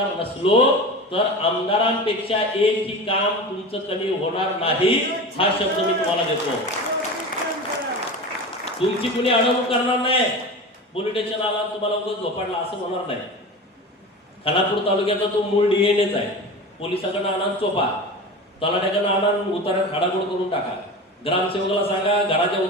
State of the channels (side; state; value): both; normal; correlation 0.31